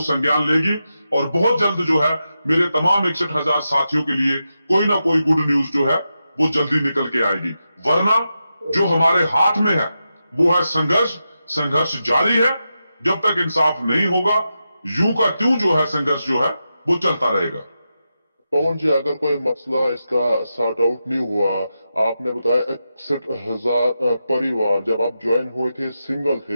संज्ञान लेगी, और बहुत जल्द जो है मेरे तमाम 61,000 साथियों के लिए कोई ना कोई गुड न्यूज जो है वो जल्दी निकल के आएगी। वरना जो हमारे हाथ में है वो है संघर्ष जारी है। जब तक इंसाफ नहीं होगा यूं का त्यों जो है संघर्ष जो है वो चलता रहेगा। पवन जी, अगर कोई मसला इसका सॉर्ट आउट नहीं हुआ, आपने बताया 61,000 परिवार जब आप ज्वाइन हुए थे सिंगल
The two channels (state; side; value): inverted; both; correlation -0.89